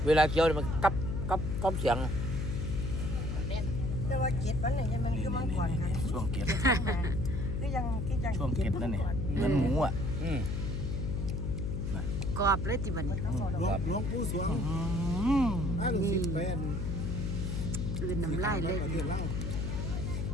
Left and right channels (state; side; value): noise; left; hum, 2 dB below the sound